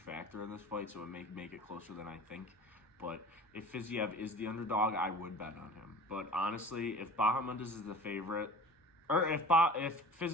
in this fight, so it may make it closer than I think. But if Fiziev is the underdog, I would bet on him. But honestly, if Bahamondes is the favorite, or if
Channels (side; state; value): both; normal; correlation 0.40